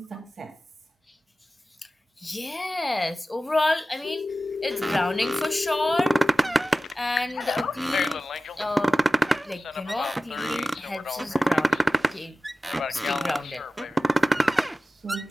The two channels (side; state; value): both; normal; correlation 0.95